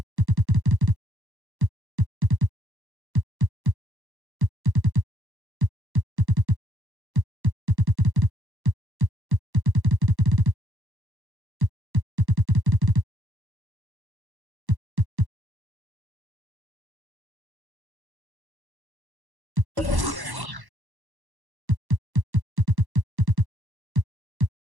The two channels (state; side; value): late; left; 1.1 ms